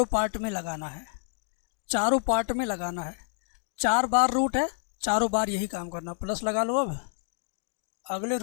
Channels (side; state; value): right; silent; digital silence